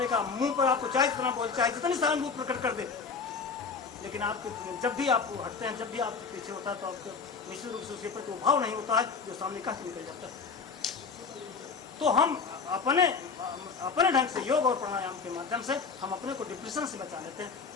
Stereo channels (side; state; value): right; quieter; 5.3 dB